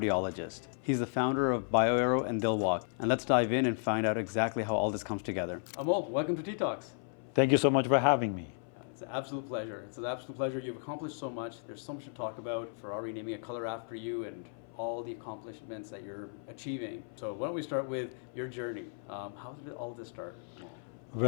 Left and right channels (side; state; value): right; silent; 55 dB below the other